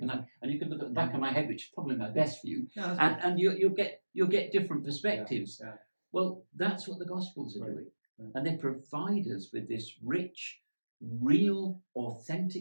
look at the back of my head, which is probably my best view, and you'll get different perspectives. Well, that's what the Gospels are doing. and they provide us with this rich, real,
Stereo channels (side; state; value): both; inverted; correlation -1.00